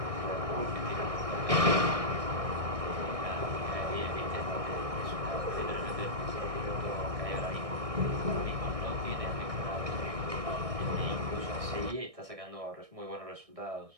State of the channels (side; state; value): left; late; 1.6 ms